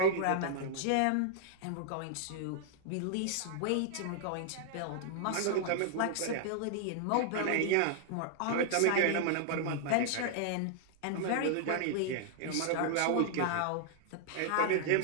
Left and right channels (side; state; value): both; different; correlation 0.00